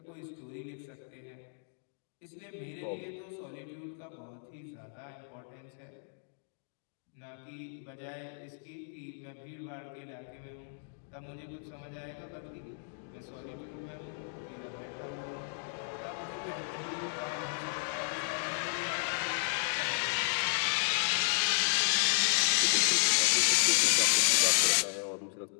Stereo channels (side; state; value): right; silent; digital silence